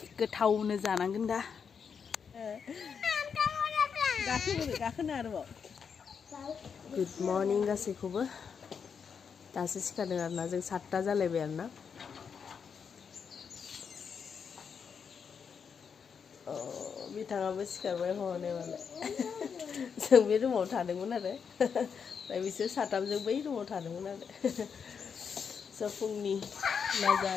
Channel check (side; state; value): right; quieter; 6.5 dB